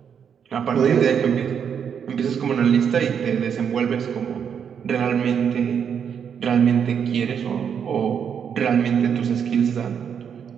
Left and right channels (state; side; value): quieter; left; 7.6 dB